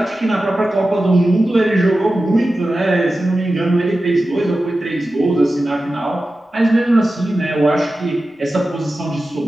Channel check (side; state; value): both; normal; correlation 0.94